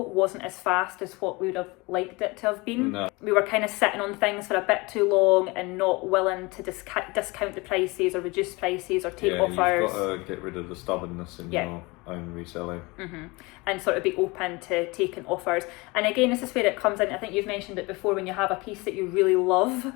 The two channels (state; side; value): quieter; right; 24.7 dB